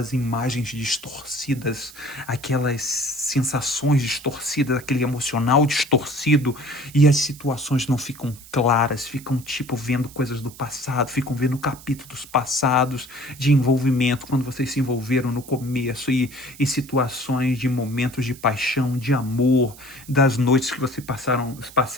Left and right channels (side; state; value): right; noise; hiss, 19 dB below the sound